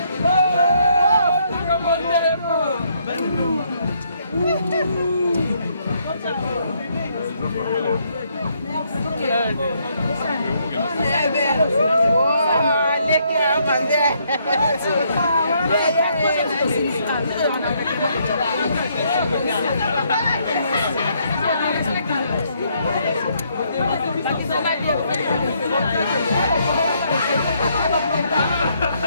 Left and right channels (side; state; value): both; inverted; correlation -0.71